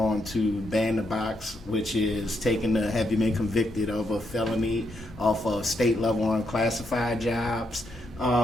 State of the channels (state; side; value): normal; both; correlation 0.79